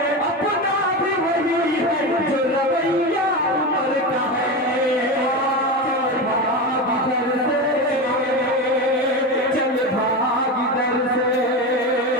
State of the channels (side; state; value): both; normal; correlation 0.20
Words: अपना भी वही है जो रवैया उमर का है। चल भाग दर से,